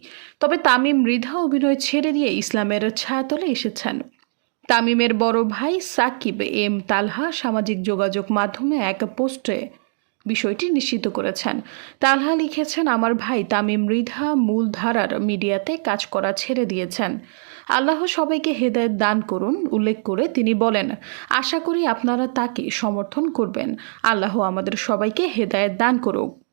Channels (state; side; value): silent; left; digital silence